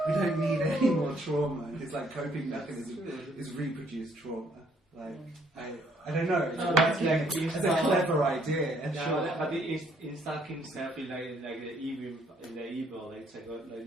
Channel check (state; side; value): normal; both; correlation 0.66